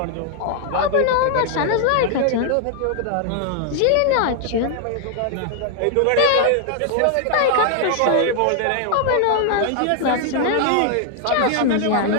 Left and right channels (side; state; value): both; different; correlation 0.00